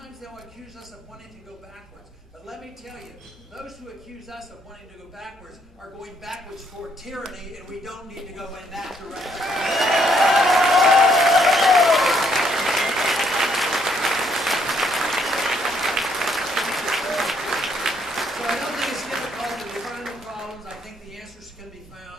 they'll accuse us of wanting to go backwards. But let me tell you, those who accuse us of wanting to go backwards are going backwards for tyranny, and we don't need to go in that direction. So I don't think it's difficult to define the problems. I think the answers can be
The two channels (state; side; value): normal; both; correlation 0.70